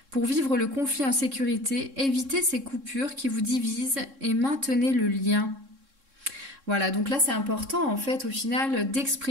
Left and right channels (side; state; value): left; late; 3.6 ms